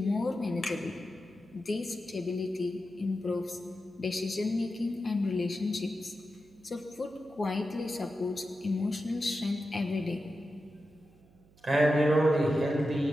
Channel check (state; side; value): noise; right; hum, 28 dB below the sound